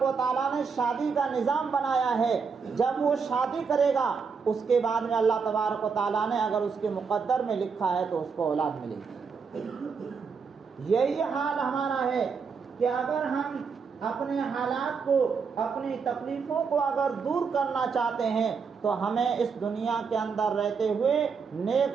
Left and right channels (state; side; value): quieter; left; 5.6 dB